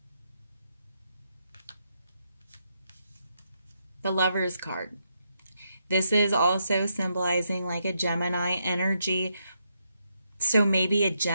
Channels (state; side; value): inverted; both; correlation -0.80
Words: Lover's card. This is also symbolizing like a Gemini energy. So maybe a